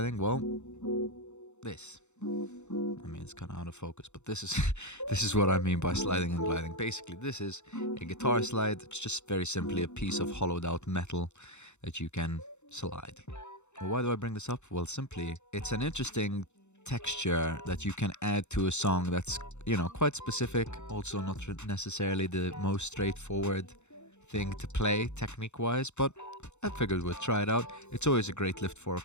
Well, this. I mean, it's kind of out of focus, but this is this is what I mean by sliding and gliding. Basically, this is a guitar slide. It's just very simply a piece of hollowed out metal that you can slide. Well, why do I bring this up? Well, simply, it's an interesting texture that you can add to a song that's, quite specific, also not necessarily the most straightforward thing to play technique wise, but I figured we'd try it out. It's always a great lift for a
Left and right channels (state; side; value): late; right; 0.83 ms